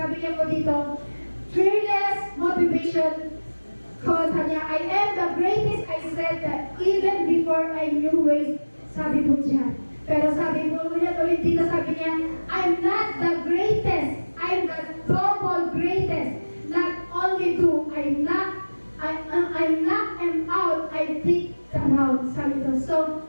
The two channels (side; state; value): both; inverted; correlation -1.00